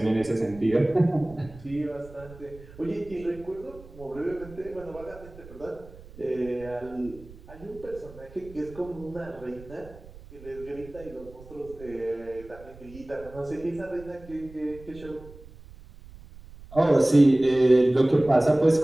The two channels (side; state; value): right; noise; rumble, 19 dB below the sound